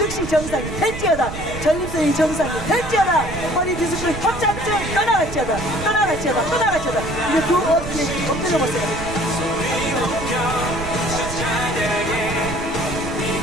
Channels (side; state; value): right; noise; rumble, 9 dB below the sound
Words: 정상이 될지어다. 전립선이 정상이 될지어다. 허리 디스크 협착증 떠나갈지어다. 떠나갈지어다. 떠나갈지어다. 이제 그 엎드려 보세요.